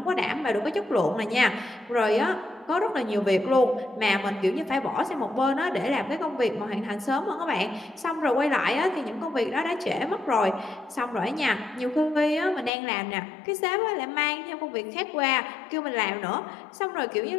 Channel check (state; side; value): drops out; right; at 12.7 s